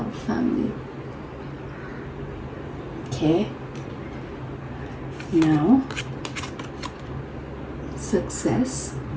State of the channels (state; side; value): identical; both; correlation 1.00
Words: family. Okay. Now, success.